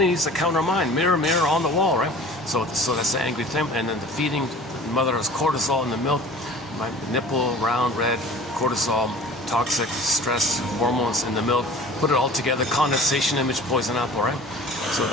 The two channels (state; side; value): normal; both; correlation 0.44